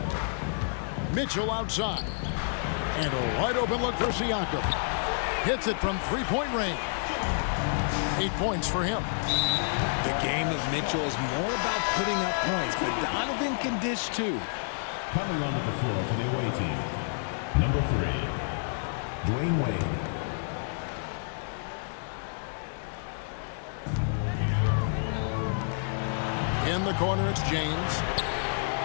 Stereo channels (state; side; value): silent; right; 58 dB below the other